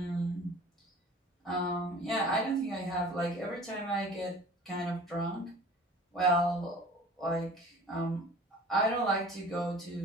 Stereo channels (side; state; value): both; normal; correlation 0.45